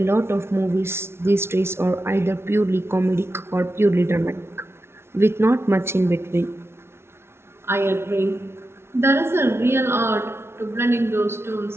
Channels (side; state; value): left; late; 0.12 ms